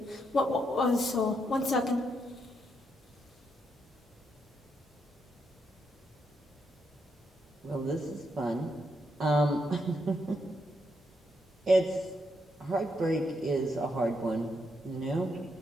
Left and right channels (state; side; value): normal; both; correlation 0.79